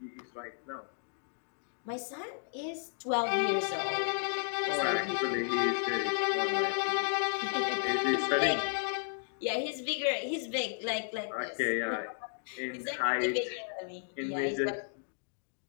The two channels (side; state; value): right; silent; digital silence